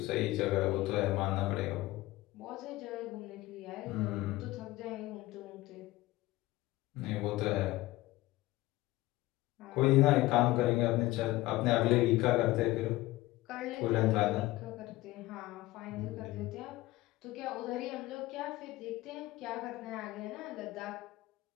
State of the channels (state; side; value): quieter; right; 18.2 dB